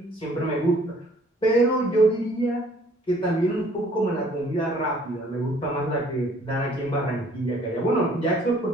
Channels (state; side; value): normal; both; correlation 0.58